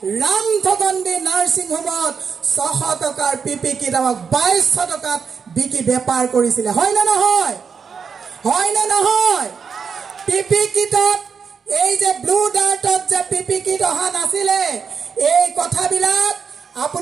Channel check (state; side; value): quieter; left; 6.2 dB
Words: ৰামঠগণ্ডী নাৰ্ছিং হোমত 600 টকাৰ পিপি কিট আমাক 2200 টকাত বিকি বেপাৰ কৰিছিলে। হয় না নহয়? হয় না নহয়? পিপি কিটত এই যে ব্লু ডাৰ্টত যে পিপি কিট অহা নাছিলে, এই কথাবিলাক